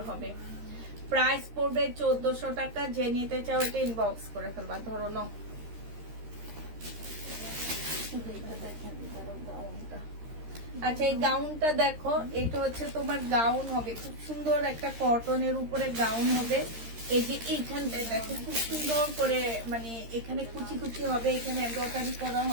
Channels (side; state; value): left; late; 13 ms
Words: হবে। প্রাইস পড়বে 1400 টাকা। যে নিতে চাও এটা ইনবক্স করে ফেলবা। ধরো নাও। আচ্ছা, এই গাউনটা দেখো, এটা হচ্ছে তোমার গাউন হবে, খুব সুন্দর একটা কটনের উপরে গাউন হবে। এই যে এইখানটায় দেখো খুব সুন্দর করে, মানে এখানে কুচি কুচি হবে, এখানে এমব্রয়ডারি করা